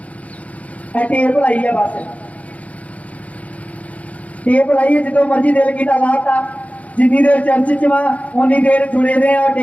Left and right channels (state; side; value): late; right; 0.067 ms